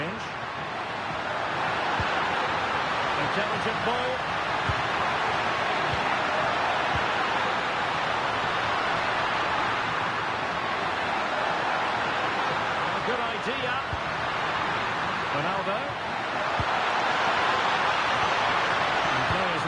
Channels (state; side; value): identical; both; correlation 1.00